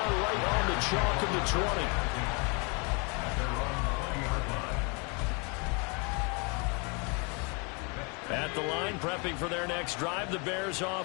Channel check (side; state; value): right; quieter; 32.8 dB